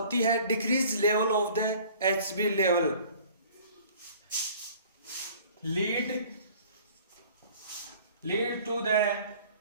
है decrease level of the HB level, lead to the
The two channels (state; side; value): inverted; both; correlation -0.49